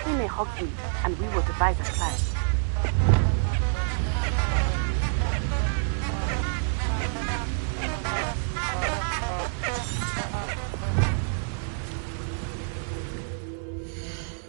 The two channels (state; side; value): silent; left; digital silence